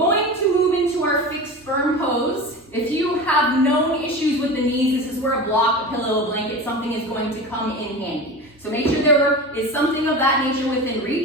to move into our fixed firm pose. If you have known issues with the knees, this is where a block, a pillow, a blanket, something is going to come in handy. So make sure there is something of that nature within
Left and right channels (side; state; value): both; normal; correlation 0.29